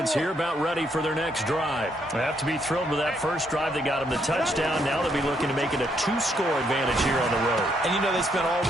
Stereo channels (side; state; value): both; normal; correlation 0.74